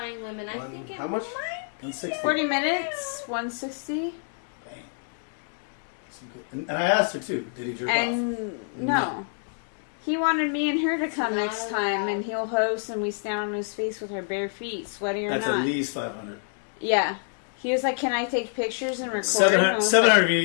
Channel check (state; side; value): silent; right; 60 dB below the other